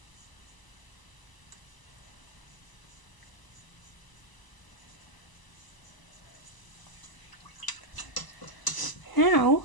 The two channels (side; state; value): right; late; 1.0 ms